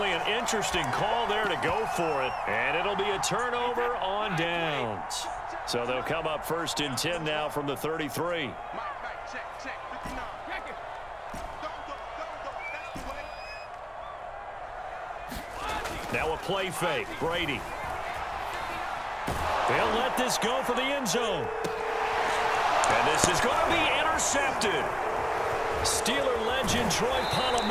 an interesting call there to go for it. And it'll be a turnover on downs. So they'll come up 1st and 10 now from the 33. Now a play fake. Brady. They'll let this go for the end zone. And this is going to be intercepted. Steeler legend Troy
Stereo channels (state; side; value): identical; both; correlation 1.00